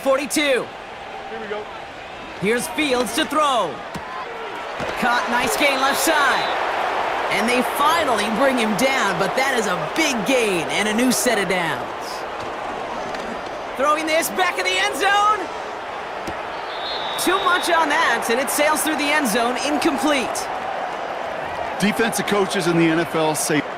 Here we go. Here's Fields to throw. Caught, nice gain left side. And they finally bring him down, but that is a big gain and a new set of downs. Throwing this back in the end zone. Too much on that, and it sails through the end zone, incomplete. defensive coaches in the NFL say...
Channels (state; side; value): identical; both; correlation 1.00